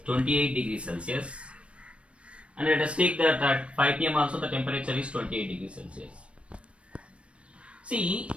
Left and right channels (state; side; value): late; left; 0.061 ms